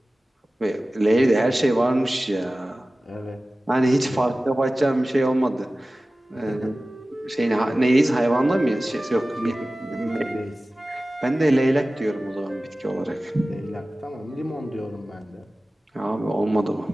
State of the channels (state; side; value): normal; both; correlation 0.97